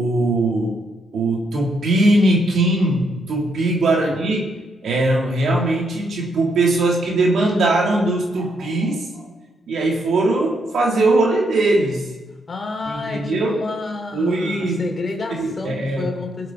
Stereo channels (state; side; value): normal; both; correlation 0.76